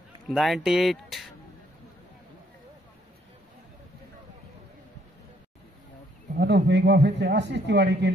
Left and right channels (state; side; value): normal; both; correlation 0.67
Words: 98। अनूप एक बार फिर से आशीष तिवारी के